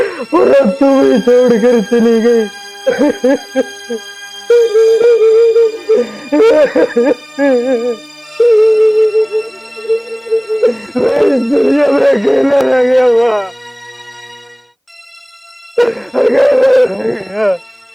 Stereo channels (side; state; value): both; identical; correlation 1.00